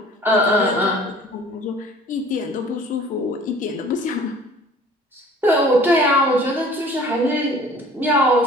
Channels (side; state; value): both; normal; correlation 0.49